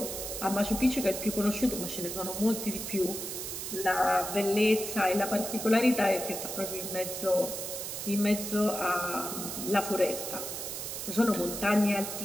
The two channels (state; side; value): noise; right; hiss, 6 dB below the sound